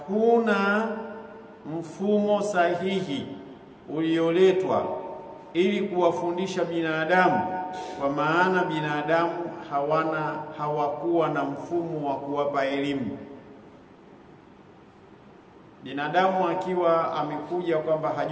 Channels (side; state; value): both; identical; correlation 1.00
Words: mfumo sahihi ulioletwa ili kuwafundisha binadamu, kwa maana binadamu hawakuwa na mfumo wa kuwapa elimu. Binadamu akiwa amekuja kwamba